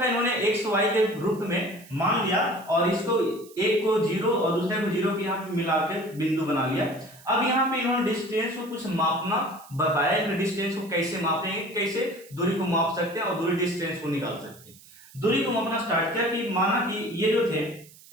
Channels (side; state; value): right; noise; hiss, 23 dB below the sound